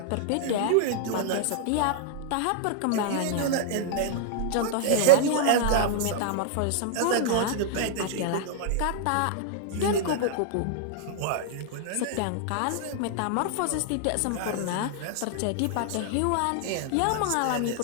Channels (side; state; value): both; different; correlation -0.01